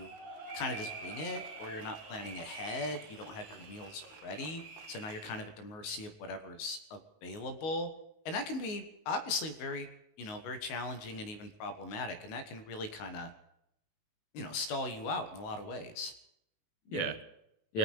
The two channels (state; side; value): late; right; 19 ms